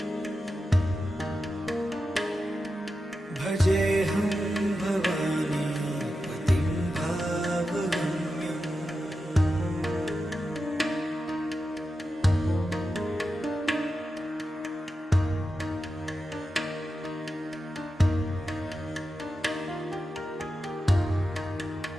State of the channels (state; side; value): normal; both; correlation 0.90